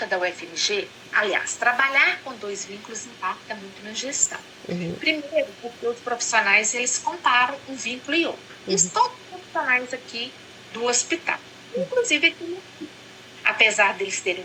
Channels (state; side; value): identical; both; correlation 1.00